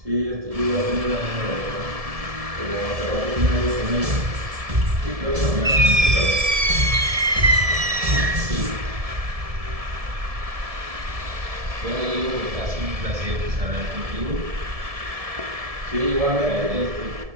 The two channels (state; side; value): late; left; 1.7 ms